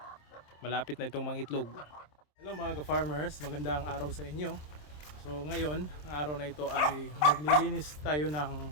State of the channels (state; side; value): late; right; 27 ms